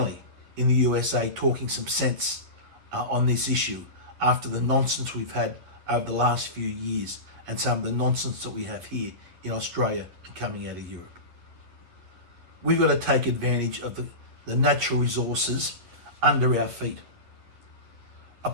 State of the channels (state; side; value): late; left; 10 ms